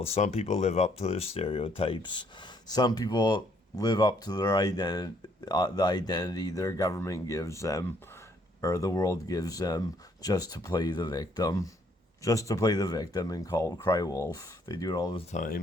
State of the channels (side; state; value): both; normal; correlation 0.67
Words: Some people live up to their stereotypes. Some people live up to their the identity their government gives them, or the world gives them, just to play the victim. Just to play the victim and cry wolf. They do it all the